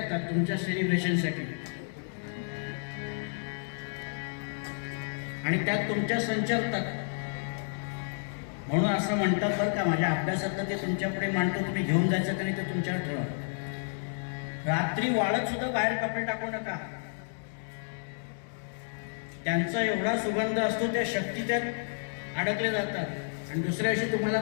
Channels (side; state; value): right; silent; digital silence